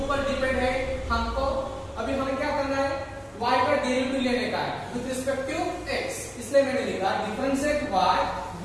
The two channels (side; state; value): both; identical; correlation 1.00